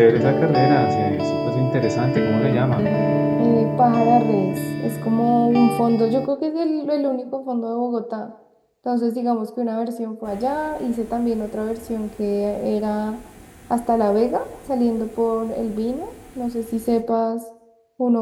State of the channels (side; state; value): both; identical; correlation 1.00